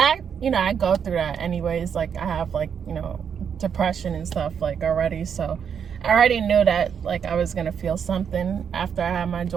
go through that anyways. Like, I have, like, you know, depression and stuff, like, already. So I already knew that, like, I was gonna feel something after I had my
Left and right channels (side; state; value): left; quieter; 7.5 dB